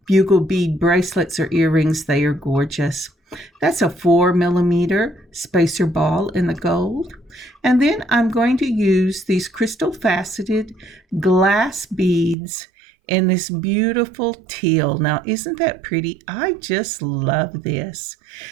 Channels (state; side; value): drops out; left; at 12.4 s